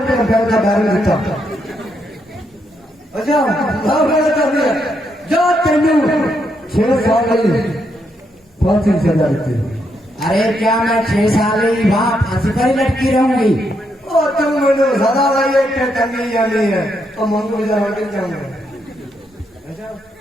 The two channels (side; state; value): both; normal; correlation 0.78